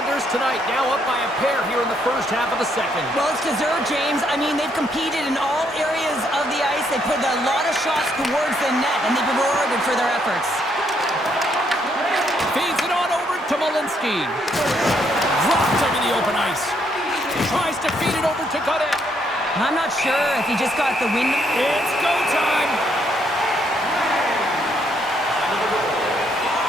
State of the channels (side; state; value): both; normal; correlation 0.72